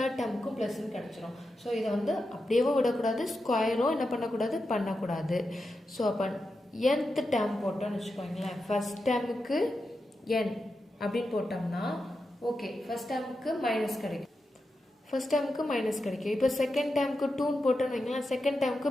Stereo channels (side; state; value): both; normal; correlation 0.89